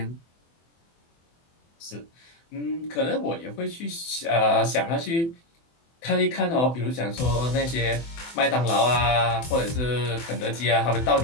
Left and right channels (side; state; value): right; late; 24 ms